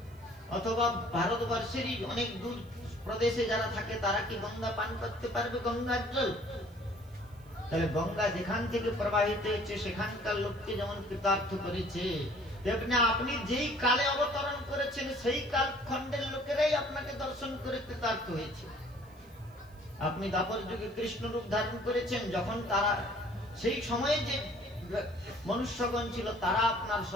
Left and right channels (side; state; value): right; noise; hiss, 30 dB below the sound